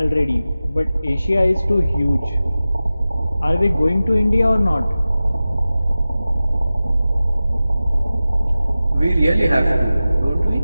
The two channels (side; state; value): both; inverted; correlation -0.95